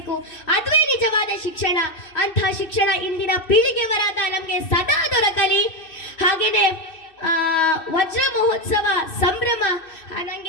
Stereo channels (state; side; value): late; right; 2.6 ms